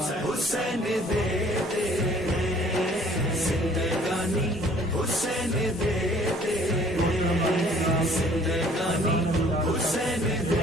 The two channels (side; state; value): both; normal; correlation 0.56